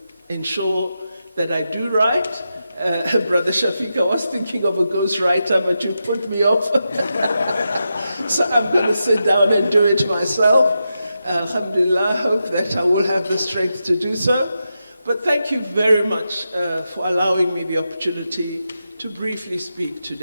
ensure that I do write. Brother Shafiq, I was thinking of a ghostwriter, but you put me off. So I'm going to sit down and do it myself. Alhamdulillah, I hope that I will have the strength to do so. But thank you very much for allowing me the opportunity to briefly speak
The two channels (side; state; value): both; inverted; correlation -0.88